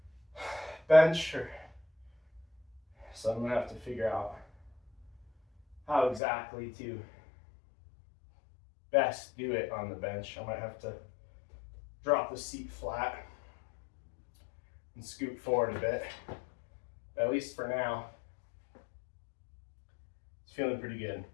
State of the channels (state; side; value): drops out; right; at 6.2 s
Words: bench, so I'm gonna have to figure out how exactly to best do it on the bench. I might have to drop the seat flat and scoot forward a bit. At least for now, it's feeling pretty good.